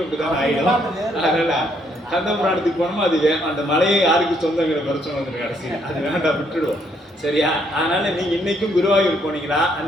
அப்படிதான் ஆயிடும். அதனால கந்தபுராணத்துக்கு போனோமா அது அந்த மலையை யாருக்கு சொந்தங்கிற பிரச்சனை வந்துடும் கடைசியில். அது வேண்டாம், விட்டுடுவோம். சரியா? அதனால நீங்க இன்னைக்கும் குருவாயூர் போனீங்களா,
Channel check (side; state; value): both; normal; correlation 0.70